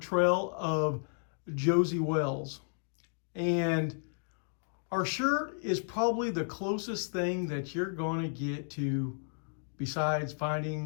of Josey Wales. And our shirt is probably the closest thing that you're going to get to besides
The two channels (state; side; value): silent; right; digital silence